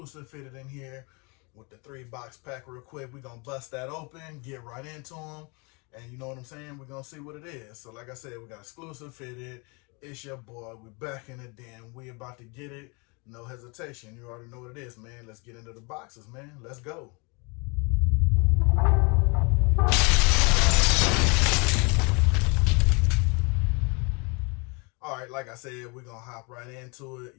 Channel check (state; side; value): quieter; right; 30.6 dB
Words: fitted in here with the 3-box pack real quick. We're going to bust that open, get right into them. And you know what I'm saying? We're going to see what it is. So like I said, we got exclusive fitted. It's your boy. We back in the den. We about to get it. No hesitation. You already know what it is, man. Let's get into the boxes, man. Let's go. All right, like I said, we're going to hop right into it.